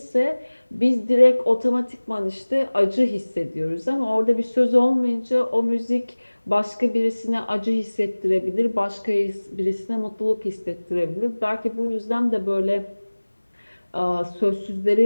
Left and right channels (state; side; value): inverted; both; correlation -1.00